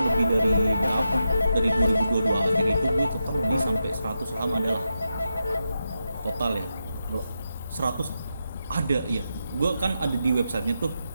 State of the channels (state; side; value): inverted; both; correlation -0.87